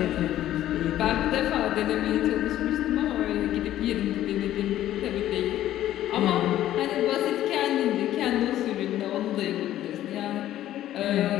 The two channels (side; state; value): right; quieter; 13.0 dB